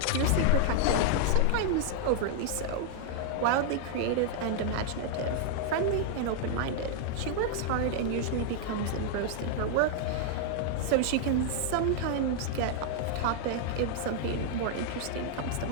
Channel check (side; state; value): both; different; correlation -0.01